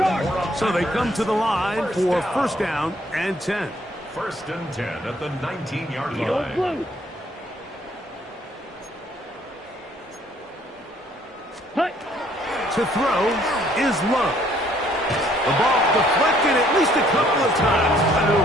So they come to the line for 1st down and 10. 1st and 10 at the 19-yard Yellow line. blue. Hut. To throw is Love. The ball deflected at least a couple of times, and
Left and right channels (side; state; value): both; normal; correlation 0.63